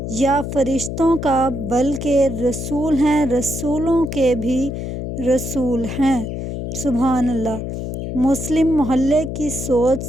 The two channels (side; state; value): left; noise; hum, 5 dB below the sound